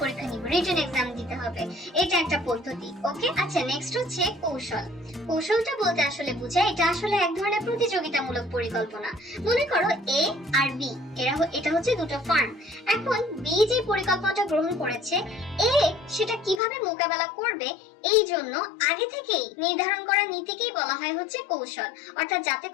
পরীক্ষা নিব, রিটেন এক্সাম দিতে হবে, এটা একটা পদ্ধতি। ওকে, আচ্ছা নেক্সট হচ্ছে কৌশল। কৌশলটা বলতে আসলে বোঝায় এটা আসলে এক ধরনের প্রতিযোগিতামূলক পরিকল্পনা। মনে করো এ আর বি এটা হচ্ছে দুটো ফার্ম। এখন বি যে পরিকল্পনাটা গ্রহণ করেছে এ সেটা কিভাবে মোকাবেলা করবে এই জন্য আগে থেকেই নির্ধারণ করা নীতিকেই বলা হয় হচ্ছে কৌশল, অর্থাৎ যাতে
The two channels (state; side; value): drops out; right; at 16.6 s